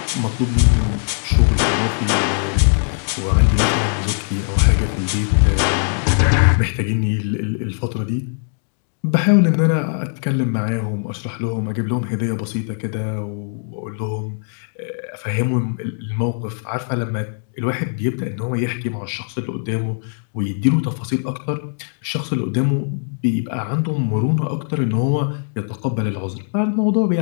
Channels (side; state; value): right; silent; digital silence